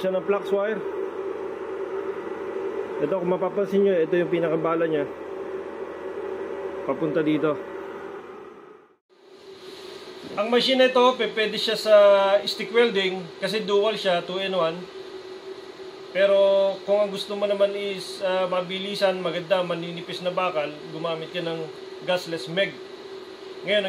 ng flux wire. Ito, kung mapapansin nyo, ito yung pinakabala nya papunta dito. Ang machine na ito, pwede siya sa stick welding kasi dual siya, 2-in-1. Pero kung ang gusto mo naman is mabilisan, maganda, maninipis na bakal, gumamit ka ng gasless MEG. Ngayon,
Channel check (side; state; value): both; identical; correlation 1.00